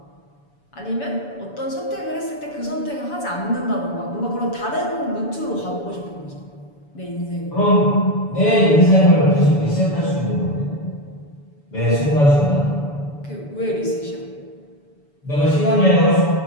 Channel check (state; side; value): late; right; 7.0 ms